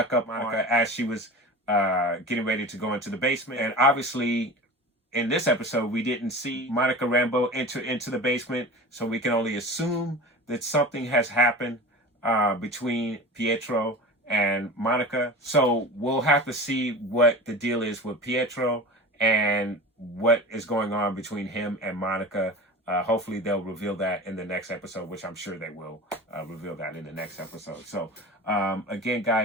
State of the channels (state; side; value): normal; both; correlation 0.33